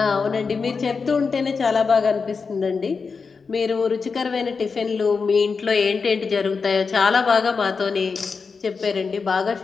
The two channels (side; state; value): right; quieter; 5.0 dB